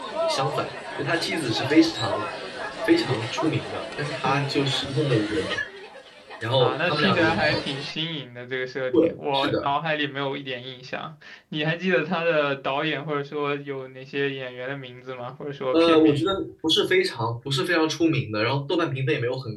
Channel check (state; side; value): identical; both; correlation 1.00